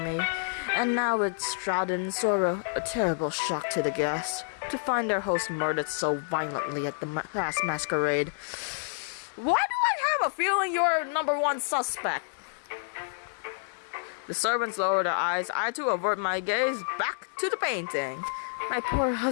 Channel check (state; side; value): silent; right; digital silence